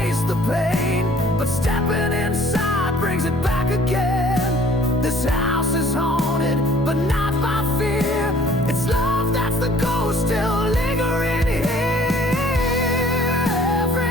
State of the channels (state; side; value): normal; both; correlation 0.55